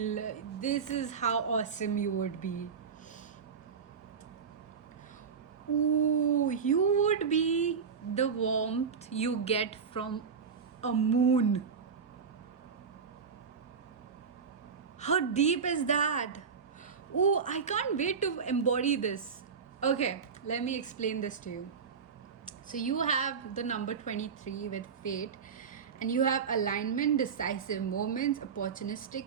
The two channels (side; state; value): left; quieter; 6.1 dB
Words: this is how awesome you would be. Ooh, you would be the warmth you get from a moon. How deep is that? Ooh, I can't wait to embody this. Okay, let me explain this to you. So you have the number 23 with fate, and you have alignment, decisive moments,